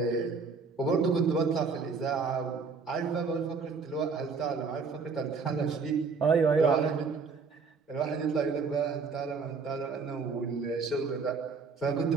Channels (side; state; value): left; quieter; 4.9 dB